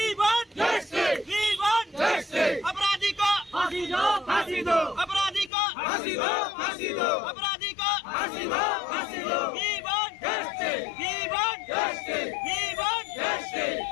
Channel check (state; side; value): drops out; right; at 5.5 s